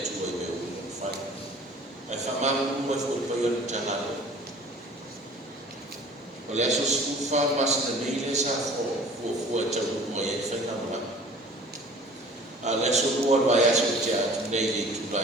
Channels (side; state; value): both; normal; correlation 0.47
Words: tu ai meu fai ai faman mo foi payon tanalo olha só se fa mas na meile sa fo tau mo ia fai na ma ala so o vai aso tia nei tu